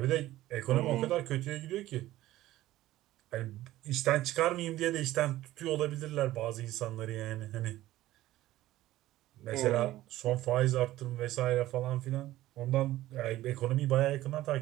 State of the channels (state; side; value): quieter; left; 15.5 dB